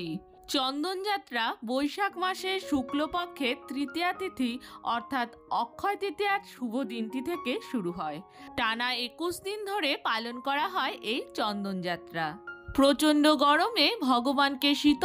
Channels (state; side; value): identical; both; correlation 1.00